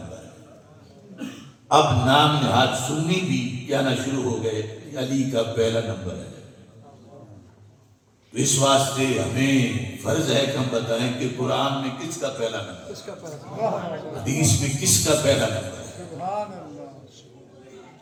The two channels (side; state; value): both; identical; correlation 1.00